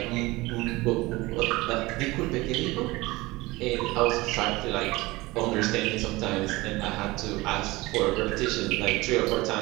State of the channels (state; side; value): quieter; left; 21.0 dB